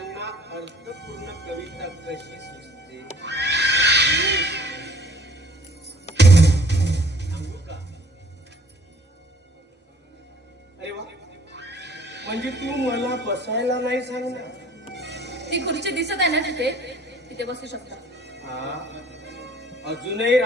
अर्थपूर्ण कविता कशी सुचते सांगू का? अरे वा, म्हणजे तू मला बसायला नाही सांगणार? ती खुर्ची दिसत आहे ना तिथे, तिथे बसू शकता. हा, अजूनही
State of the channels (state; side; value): normal; both; correlation 0.55